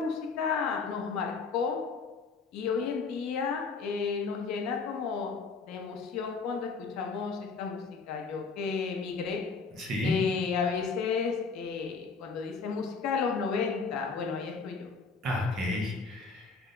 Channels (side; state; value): right; quieter; 4.7 dB